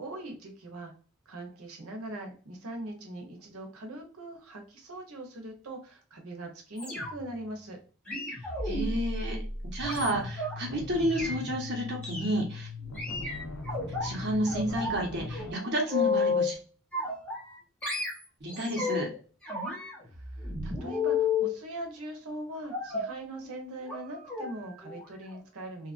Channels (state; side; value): normal; both; correlation 0.39